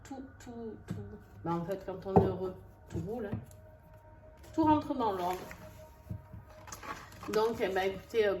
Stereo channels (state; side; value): identical; both; correlation 1.00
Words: tout. En fait, quand on est heureux, tout roule, hein. Tout rentre dans l'ordre. Donc, écoutez,